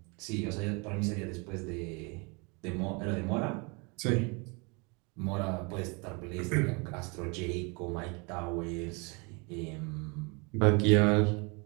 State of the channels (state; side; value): quieter; left; 30.6 dB